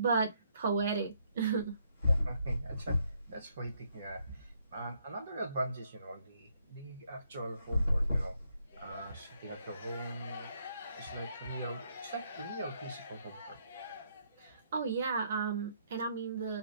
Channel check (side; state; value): both; inverted; correlation -0.73